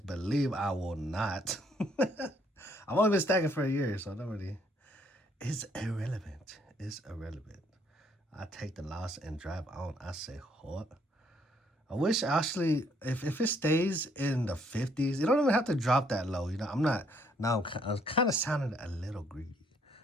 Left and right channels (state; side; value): normal; both; correlation 0.67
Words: believe I will not. I've only been stacking for a year, so I don't really. It's irrelevant. It's irrelevant. I take the loss and drive on. I say, what? I wish actually, if it stays in the 50s, you don't even have to drop that low. You know, I'm not, now I'm kind of sounding a little greedy.